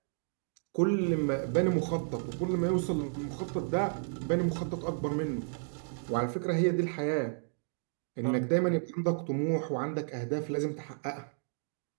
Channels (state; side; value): silent; left; digital silence